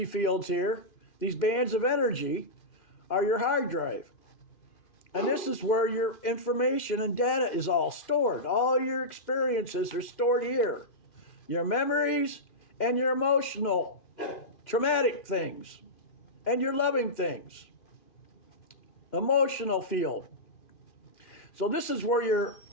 fields here, these bands of energy, are your hard drive. And this is where your information and data is all stored. All your experiences are stored here. Your memories and your emotional, traumatic things, and your loving things. Emotional field. So this is where your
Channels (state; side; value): late; right; 2.5 ms